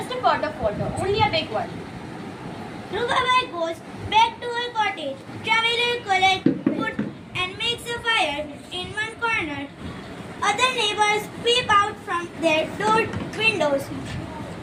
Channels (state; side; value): identical; both; correlation 1.00